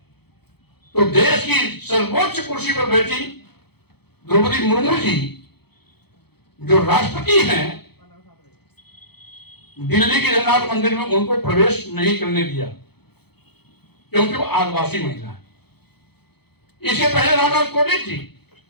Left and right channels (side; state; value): right; late; 0.97 ms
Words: तो देश की सर्वोच्च कुर्सी पर बैठी द्रौपदी मुर्मू जी जो राष्ट्रपति हैं, दिल्ली के जगन्नाथ मंदिर में उनको प्रवेश नहीं करने दिया क्योंकि वो आदिवासी महिला है। इसके पहले रामनाथ कोविंद जी,